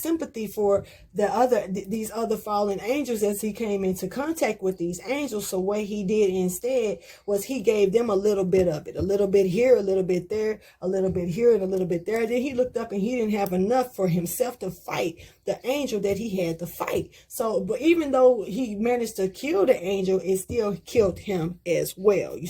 for these other fallen angels as he came into contact with these angels. So what he did instead was he gave them a little bit of it, a little bit here, a little bit there, a little bit here, and a little bit there. Then he looked up and he didn't have enough for himself to fight the angel that he had to fight. So, but even though he managed to kill the angel, it still killed him as well. You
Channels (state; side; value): identical; both; correlation 1.00